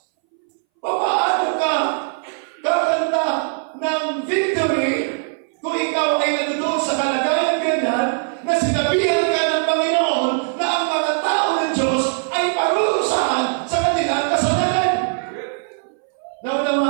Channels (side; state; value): left; silent; 62 dB below the other